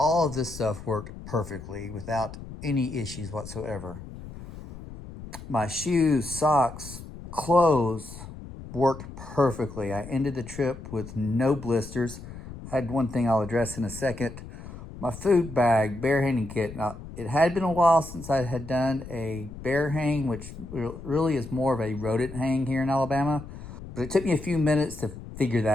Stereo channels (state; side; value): noise; left; rumble, 13 dB below the sound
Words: of this stuff worked perfectly without any issues whatsoever. My shoes, socks, clothes worked perfectly. I ended the trip with no blisters. I had one thing I'll address in a second. My food bag, bear hanging kit. Now, it had been a while since I had done a bear hang, which really is more of a rodent hang here in Alabama. But it took me a few minutes to figure